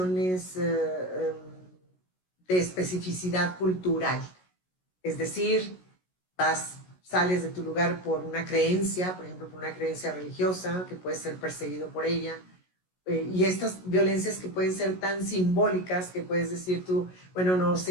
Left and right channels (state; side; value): late; right; 16 ms